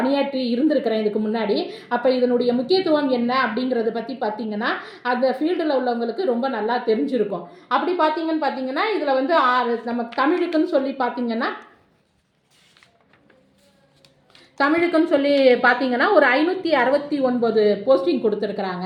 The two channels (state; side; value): identical; both; correlation 1.00